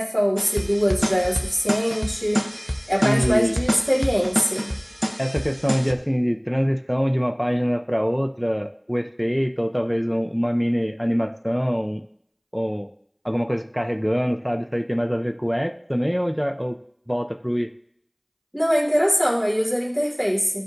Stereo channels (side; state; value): both; identical; correlation 1.00